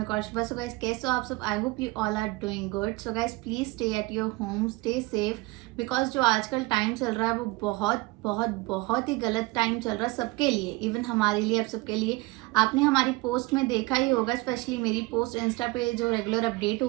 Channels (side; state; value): left; quieter; 22.8 dB